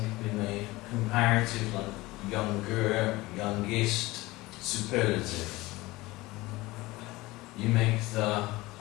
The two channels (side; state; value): right; quieter; 20.2 dB